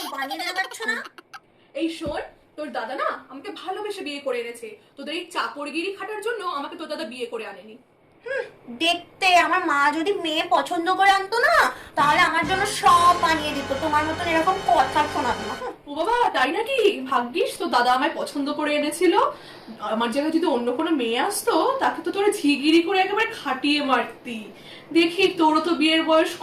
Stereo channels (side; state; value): both; identical; correlation 1.00